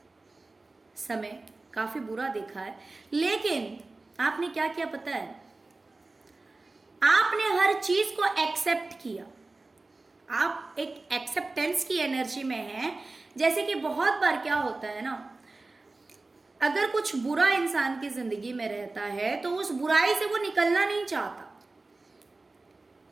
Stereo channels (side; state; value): left; quieter; 3.3 dB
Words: समय काफी बुरा देखा है, लेकिन आपने क्या किया पता है, आपने हर चीज को एक्सेप्ट किया। आप एक एक्सेप्टेंस की एनर्जी में हैं। जैसे कि बहुत बार क्या होता है ना, अगर कुछ बुरा इंसान की जिंदगी में रहता है तो उस बुराई से वो निकलना नहीं चाहता।